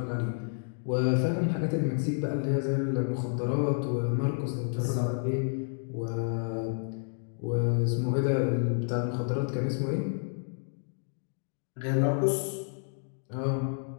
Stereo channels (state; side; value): silent; right; digital silence